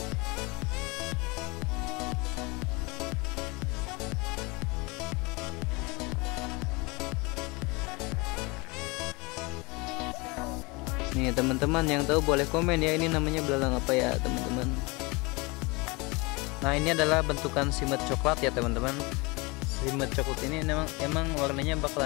Nih teman-teman yang tahu boleh komen ya, ini namanya belalang apa ya teman-teman. Nah ini adalah bentukan simet coklat ya teman-teman. Simet coklat ini emang warnanya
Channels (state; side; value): quieter; right; 26.3 dB